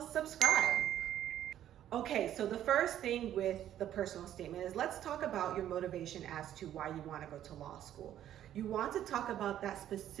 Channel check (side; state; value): left; quieter; 11.5 dB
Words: subscribe. Okay, so the first thing with the personal statement is let's talk about your motivation as to why you want to go to law school. You want to talk about that